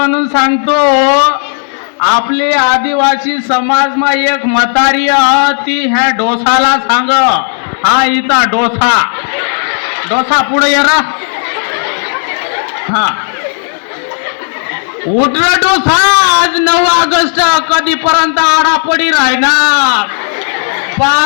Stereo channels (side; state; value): right; silent; 59 dB below the other